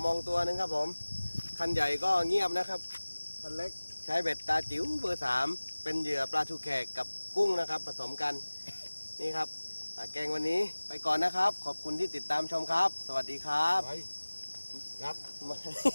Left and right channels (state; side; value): inverted; both; correlation -1.00